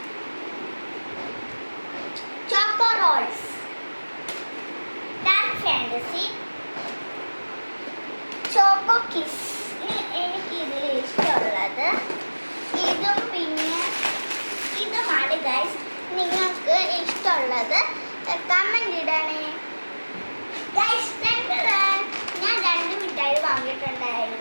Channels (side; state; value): both; inverted; correlation -1.00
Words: choco rolls, Dark Fantasy, choco kiss. എനിക്കിതിൽ ഇഷ്ടമുള്ളത് ഇതും പിന്നെ ഇതുമാണ് ഗൈസ്. നിങ്ങൾക്ക് ഇഷ്ടമുള്ളത് കമൻറ്റ് ഇടണേ ഗൈസ്. ഞാൻ രണ്ട് മിഠായി